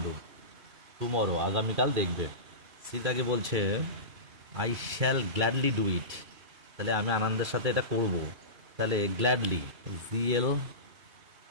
টুমরো, আগামীকাল দেখবে। সীতাকে বলছে I shall gladly do it, তাহলে আমি আনন্দের সাথে এটা করব, তাহলে গ্ল্যাডলি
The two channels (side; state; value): left; late; 2.3 ms